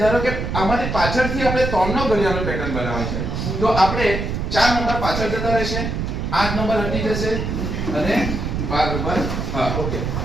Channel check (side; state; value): right; noise; rumble, 3 dB below the sound